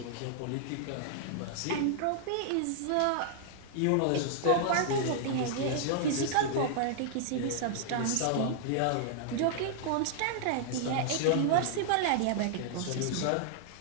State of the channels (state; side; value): different; both; correlation -0.01